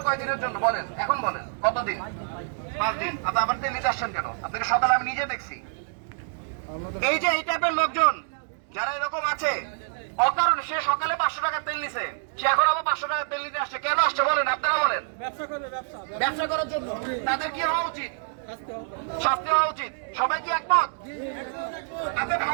কয়দিনের জন্য বলেন, এখন বলেন কতদিন? 5 দিন। আপনি আবার তেল নিতে আসছেন কেন? আপনাকে সকালে আমি নিজে দেখছি। এই যে এই টাইপের লোকজন যারা এরকম আছে, অকারণে সে সকালে 500 টাকার তেল নিছে, সে এখন আবার 500 টাকার তেল নিতে আসছে। কেন আসছে বলেন, আপনারা বলেন। ব্যবসা করার জন্য। তাদের কি হওয়া উচিত? শাস্তি হওয়া উচিত। সবাই কি একমত? আপনি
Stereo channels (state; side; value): silent; left; digital silence